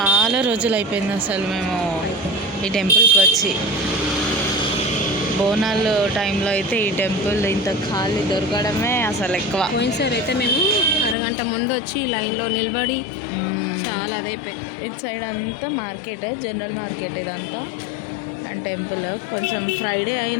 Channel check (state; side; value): drops out; right; at 11.2 s